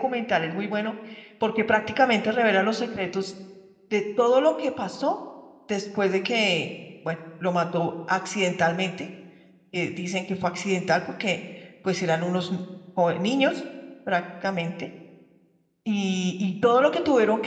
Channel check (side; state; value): both; identical; correlation 1.00